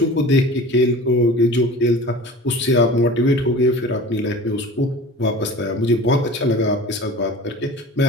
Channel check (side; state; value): both; normal; correlation 0.39